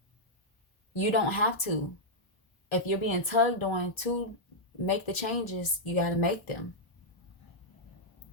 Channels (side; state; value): right; late; 1.3 ms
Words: You don't have to. If you're being tugged on to make the changes, you got to make them.